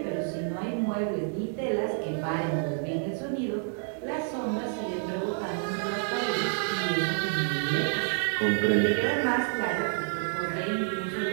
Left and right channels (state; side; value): silent; left; 59 dB below the other